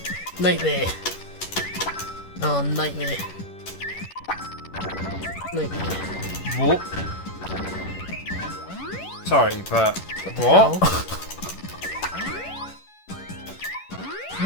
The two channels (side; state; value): right; late; 11 ms